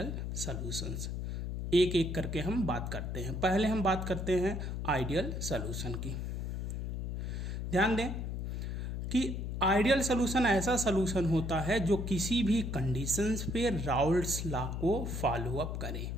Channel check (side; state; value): left; noise; hum, 3 dB below the sound